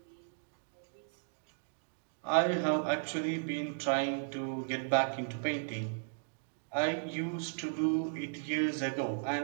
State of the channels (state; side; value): silent; left; digital silence